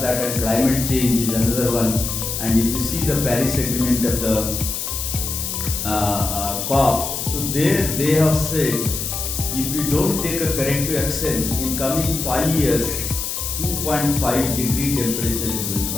and climate change is another one. And if you see the Paris Agreement of the COP, so there they have said if we don't take a corrective action in coming 5 years, 2.5 degree temperature is going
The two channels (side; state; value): left; noise; hiss, 4 dB below the sound